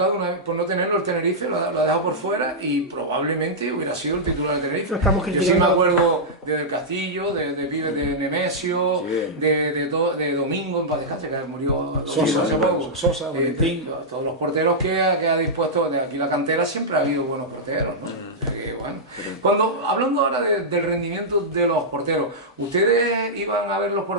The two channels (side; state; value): both; normal; correlation -0.10